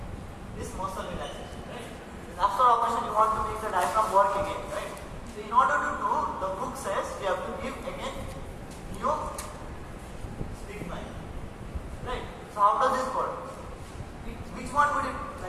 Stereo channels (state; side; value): identical; both; correlation 1.00